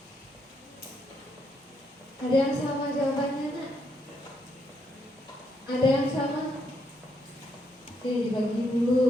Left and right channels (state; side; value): normal; both; correlation 0.76